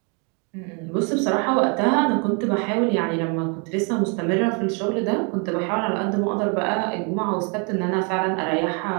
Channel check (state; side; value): quieter; left; 35.6 dB